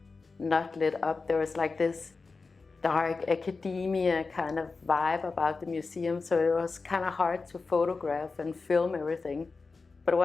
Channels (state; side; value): quieter; right; 4.2 dB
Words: not lit up. There was like this dark academia kind of vibe about the museum, so it was kind of hard to photograph and film everything. But